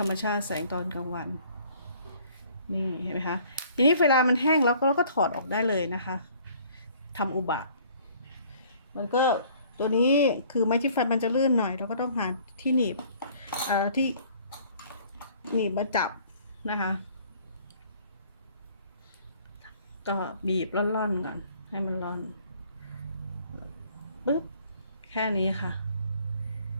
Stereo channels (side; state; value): both; inverted; correlation -0.56